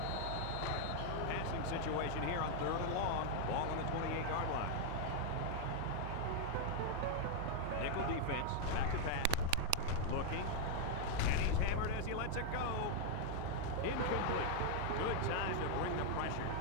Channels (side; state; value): both; different; correlation 0.00